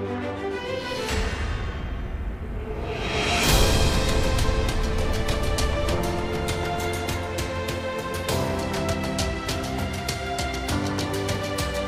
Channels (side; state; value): both; identical; correlation 1.00